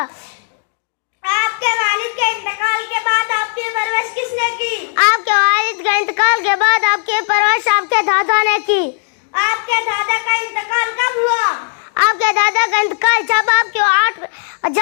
آپ کے والد کے انتقال کے بعد آپ کی پرورش کس نے کی؟ آپ کے والد کے انتقال کے بعد آپ کی پرورش آپ کے دادا نے کی. آپ کے دادا کا انتقال کب ہوا؟ آپ کے دادا کا انتقال جب آپ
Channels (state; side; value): silent; right; digital silence